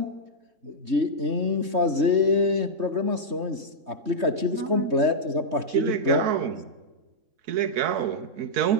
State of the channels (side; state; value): left; late; 3.2 ms